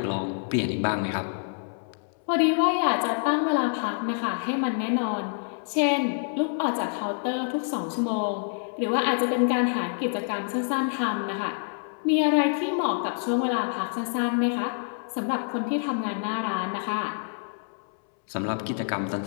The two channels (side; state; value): right; silent; 60 dB below the other